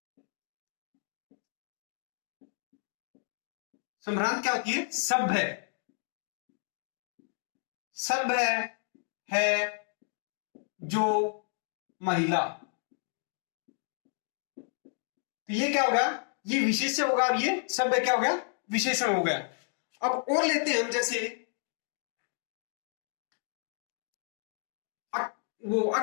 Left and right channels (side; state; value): right; silent; digital silence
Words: संभ्रांत क्या होती है? सभ्य, सभ्य है जो महिला। तो ये क्या होगा? ये विशेष्य होगा और ये सभ्य क्या होगा? विशेषण हो गया। अब और लेते हैं हम जैसे वो